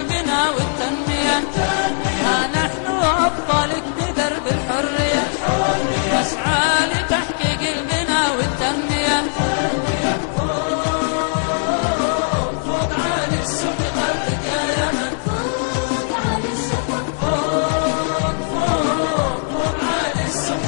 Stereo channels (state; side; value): silent; right; digital silence